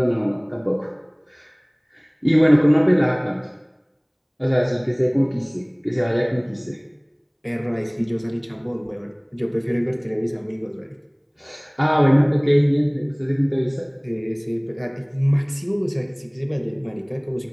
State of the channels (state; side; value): identical; both; correlation 1.00